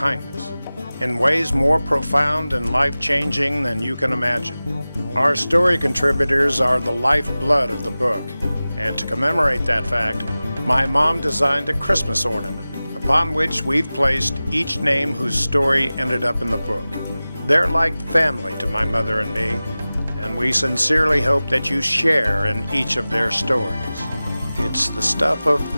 in ways more profound and life-changing than you can imagine. Our story contributors are the lifeblood of the book, and to commemorate that fact, my mom designed a Christmas ornament, upon which we've placed each name whose story ended up in the book. They're like family to my mother and me, and we sincerely hope that you share in each of their stories. It's the stuff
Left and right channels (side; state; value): both; inverted; correlation -0.97